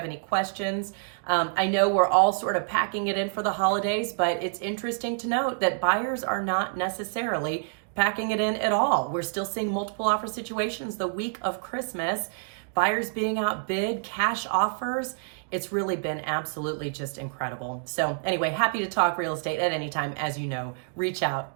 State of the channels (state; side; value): silent; left; digital silence